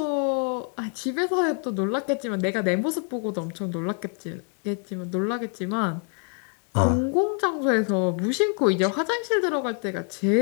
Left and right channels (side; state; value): right; quieter; 38.9 dB